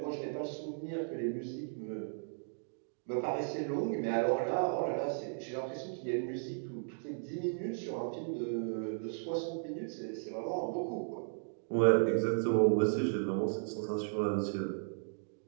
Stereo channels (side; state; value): left; silent; digital silence